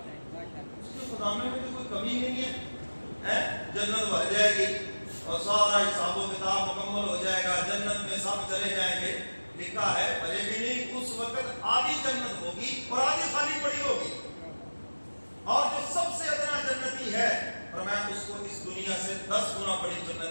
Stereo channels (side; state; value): both; inverted; correlation -1.00